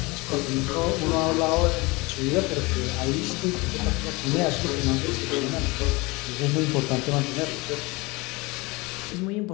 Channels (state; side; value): quieter; right; 24.6 dB